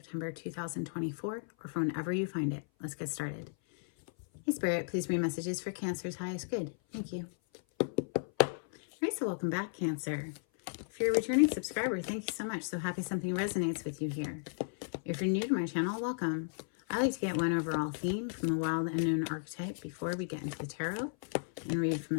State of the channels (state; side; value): silent; right; 55 dB below the other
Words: 2024, or from whenever you find it. Let's get started. Hey Spirit, please read messages for Cancer's highest good. Thank you. All right, so welcome back, Cancer. If you're a returning subscriber, thank you so much. So happy something resonates with you here. If you're new to my channel, welcome. I like to get one overall theme from the wild unknown archetype before we get into the tarot and read from